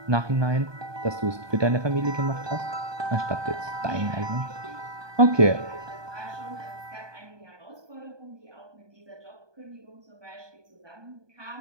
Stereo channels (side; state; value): left; late; 1.2 ms